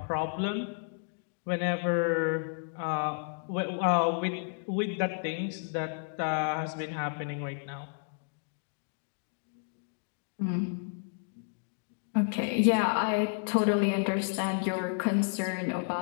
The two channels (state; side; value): silent; right; digital silence